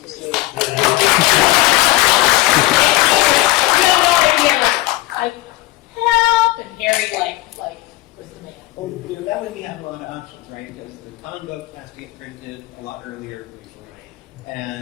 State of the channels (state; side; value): quieter; right; 18.5 dB